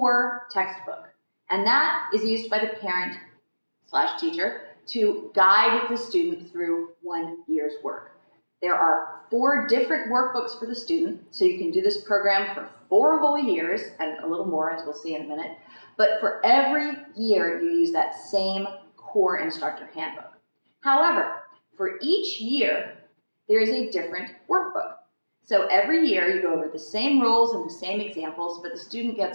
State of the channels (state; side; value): inverted; both; correlation -1.00